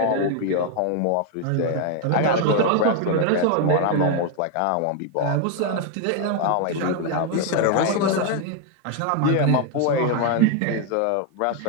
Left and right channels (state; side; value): different; both; correlation 0.01